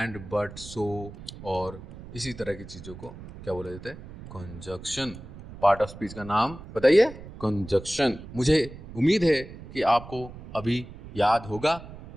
बट, सो और इसी तरह की चीज़ों को क्या बोला जाता है? कंजक्शन. पार्ट ऑफ स्पीच का नाम बताइए, कंजक्शन. मुझे उम्मीद है कि आपको अभी याद होगा.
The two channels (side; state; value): right; noise; rumble, 15 dB below the sound